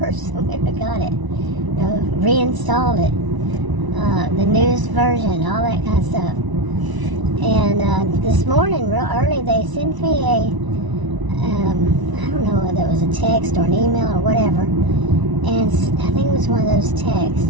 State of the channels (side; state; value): left; late; 1.0 ms